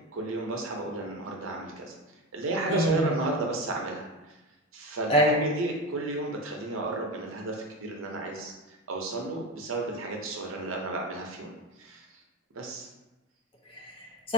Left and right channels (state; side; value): normal; both; correlation 0.21